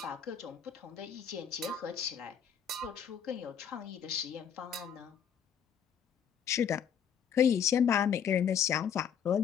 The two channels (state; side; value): quieter; right; 7.9 dB